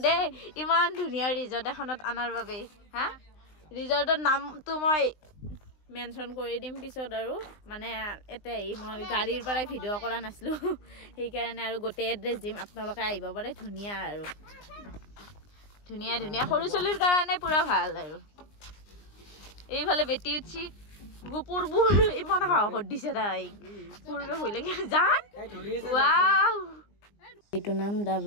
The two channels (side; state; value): right; late; 20 ms